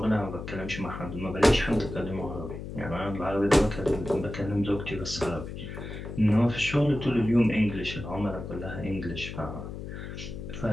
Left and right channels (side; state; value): left; noise; hum, 9 dB below the sound